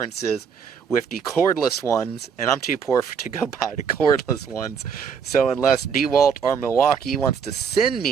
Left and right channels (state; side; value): quieter; left; 6.7 dB